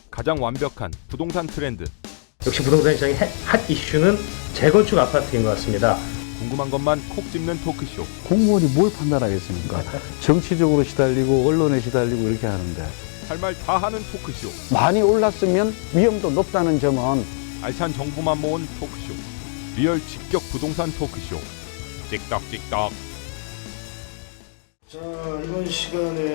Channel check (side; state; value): right; silent; digital silence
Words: 가장 완벽한 부동산 트렌드. 역시 부동산 시장의 핫 이슈는 재건축 아파트인 것 같습니다. 궁금한 것만 콕 집는 토크쇼. 공무원이 뭘 판단하겠습니까? 정치적으로 시달리고 언론에 시달리고 이렇게 하는데 할 말 다 하는 토크쇼. 많이 올랐으면 위험도 높다는 점은 알찬 정보만 모은 토크쇼. 리얼 직격 부동산 토크쇼. 찍덕찍덕. 자, 이번